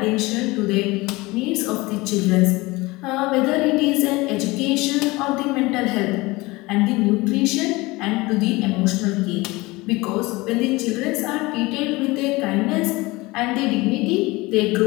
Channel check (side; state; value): right; quieter; 22.1 dB